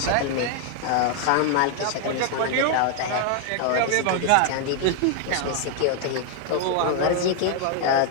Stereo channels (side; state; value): both; different; correlation 0.00